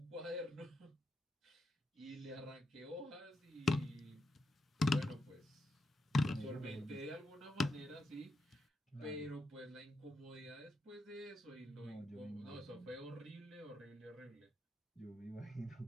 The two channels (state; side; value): normal; both; correlation 0.84